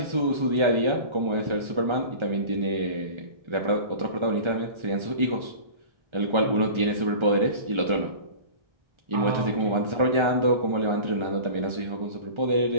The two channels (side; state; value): left; late; 1.4 ms